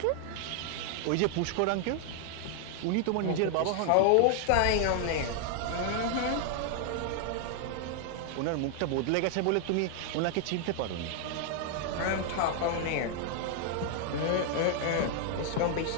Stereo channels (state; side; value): different; both; correlation 0.00